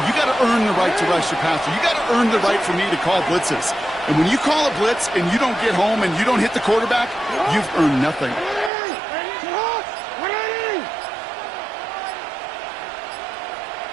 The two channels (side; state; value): left; drops out; at 8.7 s